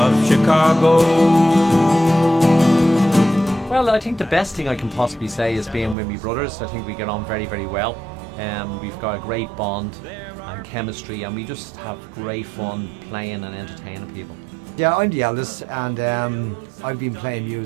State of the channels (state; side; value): drops out; left; at 6.0 s